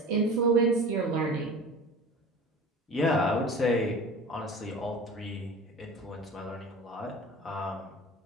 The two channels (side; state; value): both; normal; correlation 0.38